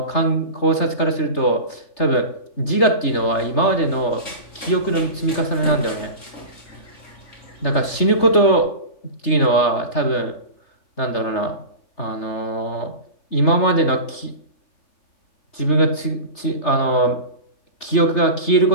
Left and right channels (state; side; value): late; right; 3.3 ms